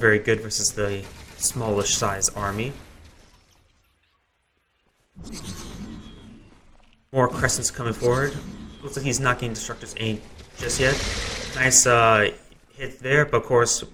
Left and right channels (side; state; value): both; identical; correlation 1.00